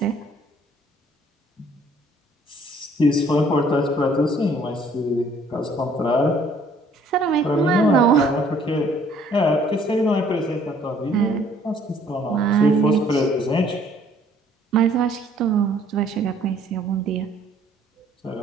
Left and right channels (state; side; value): normal; both; correlation 0.60